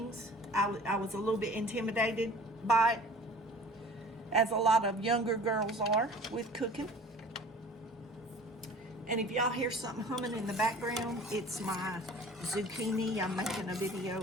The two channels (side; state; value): both; normal; correlation 0.45